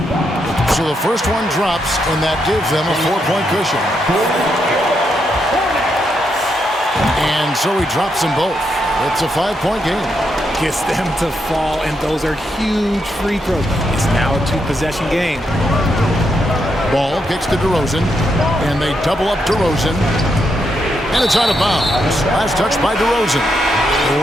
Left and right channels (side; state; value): both; normal; correlation 0.81